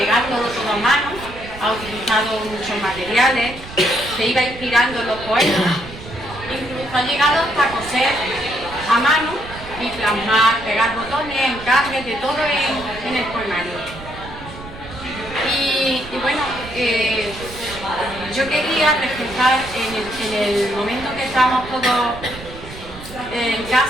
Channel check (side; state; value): right; noise; rumble, 15 dB below the sound